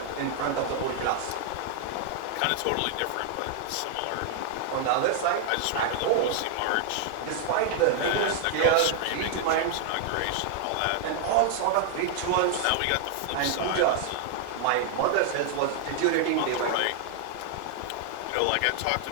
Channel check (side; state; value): both; different; correlation 0.00